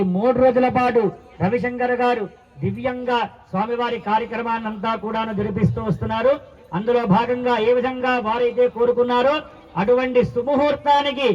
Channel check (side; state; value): both; identical; correlation 1.00